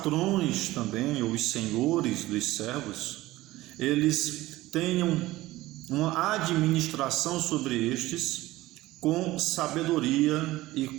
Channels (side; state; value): left; quieter; 17.5 dB